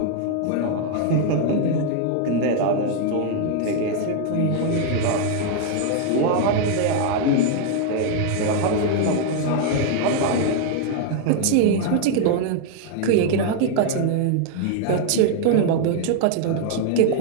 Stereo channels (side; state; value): both; different; correlation 0.00